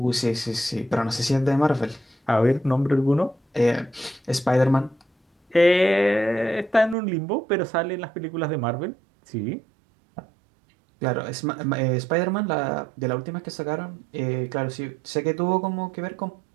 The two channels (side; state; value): left; drops out; at 7.0 s